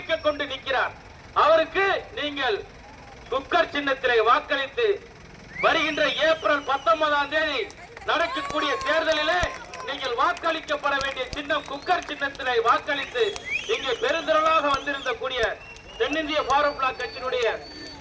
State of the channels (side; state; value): both; identical; correlation 1.00